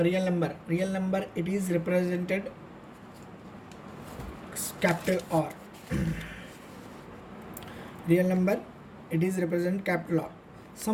number it is represented capital R. Real number it is represented capital R.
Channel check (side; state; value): both; identical; correlation 1.00